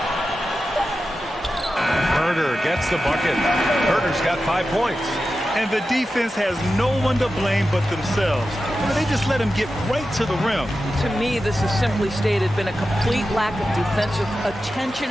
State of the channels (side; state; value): both; normal; correlation 0.92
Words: Herder gets the bucket. Herder's got 5 points. And the defense has no one to blame but themselves. They just let him get right to the rim. To me, this has simply stated been a complete lack of defensive attention